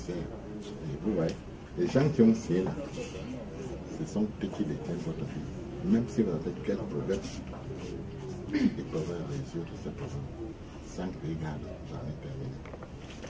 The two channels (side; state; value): both; identical; correlation 1.00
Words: Et vous voyez, les gens qui ont signé là, ce sont eux qui détiennent votre vie. Même si vous avez quel problème, ils peuvent résoudre ce problème sans que les gars jamais terminé.